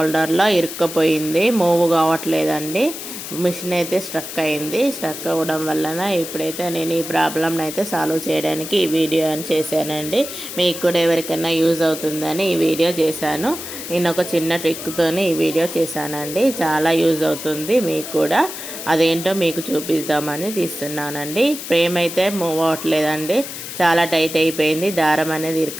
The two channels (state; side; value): noise; left; hiss, 9 dB below the sound